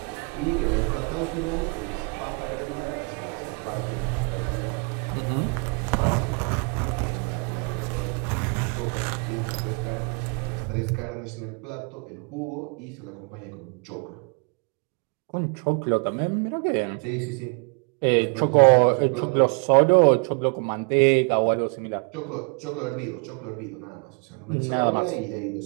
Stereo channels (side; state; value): left; quieter; 35.7 dB